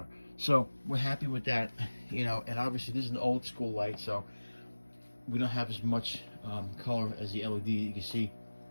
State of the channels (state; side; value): inverted; both; correlation -1.00